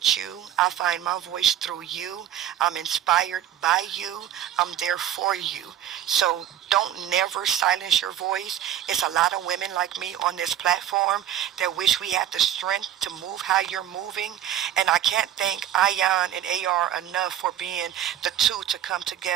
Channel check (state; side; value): quieter; left; 11.4 dB